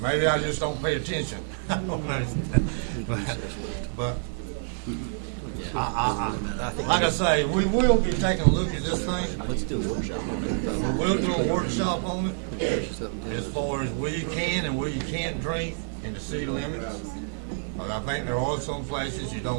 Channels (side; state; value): left; silent; digital silence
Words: maybe I just don't pay attention. I don't know. But like I say, we will be taking a look at this thing. Let's do a workshop on it. We will do a workshop on it as far as where you can and where you can't drink in the city limits. But I think there are some places you